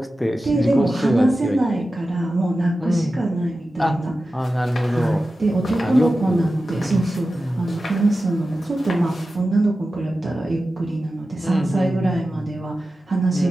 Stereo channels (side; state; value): both; normal; correlation 0.93